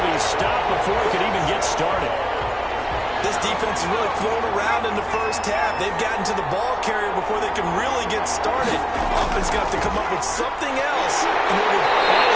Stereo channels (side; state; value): both; identical; correlation 1.00